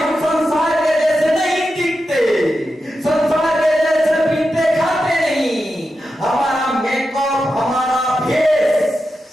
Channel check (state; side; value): normal; both; correlation 0.89